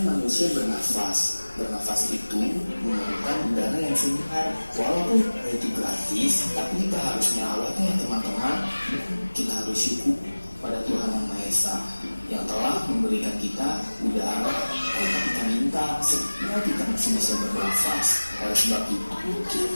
manusia bernafas. Bernafas itu memerlukan udara yang segar. Walaupun itu gratis, tapi kita harus merawatnya teman-teman. Kita harus syukur pada Tuhan Yang Maha Esa yang telah memberikan kita udara tanpa kita minta, sehingga kita masih bisa bernafas. Oleh sebab itu,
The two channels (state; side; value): inverted; both; correlation -1.00